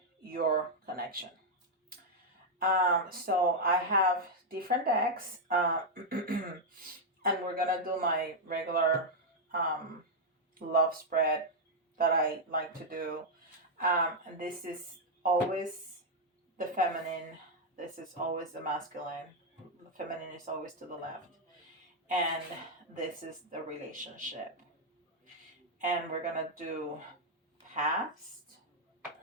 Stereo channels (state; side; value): normal; both; correlation -0.01